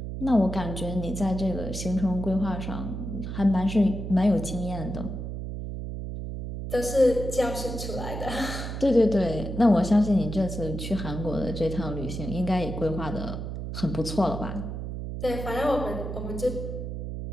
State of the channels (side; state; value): right; noise; hum, 6 dB below the sound